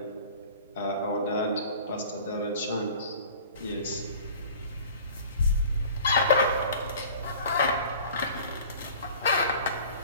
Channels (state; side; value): inverted; both; correlation -0.44